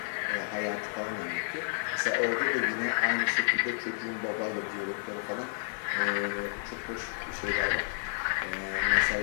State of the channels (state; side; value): silent; right; 57 dB below the other